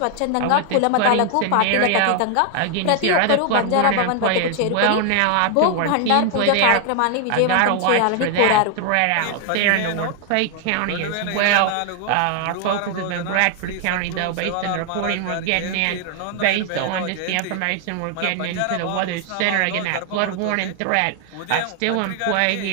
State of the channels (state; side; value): different; both; correlation 0.00